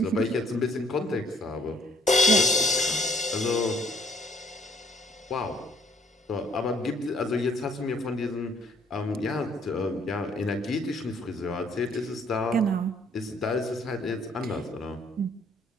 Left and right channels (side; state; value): both; normal; correlation 0.61